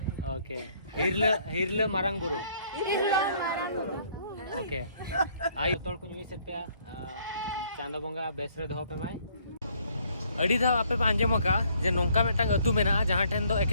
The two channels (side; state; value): both; inverted; correlation -0.64